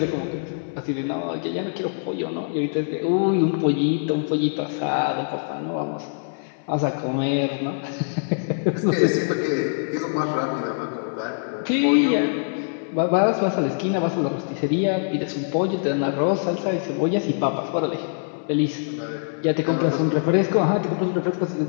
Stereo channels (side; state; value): right; silent; 58 dB below the other